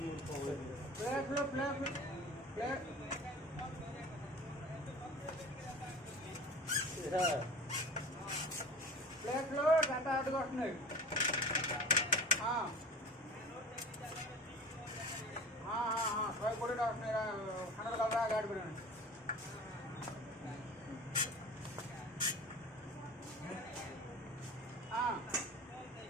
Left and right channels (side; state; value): both; normal; correlation 0.37